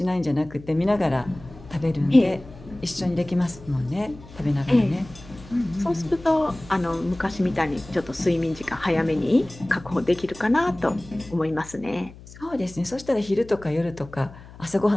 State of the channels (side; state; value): left; noise; hum, 19 dB below the sound